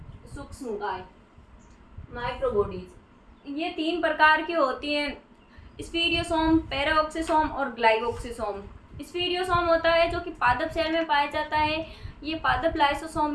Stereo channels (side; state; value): both; identical; correlation 1.00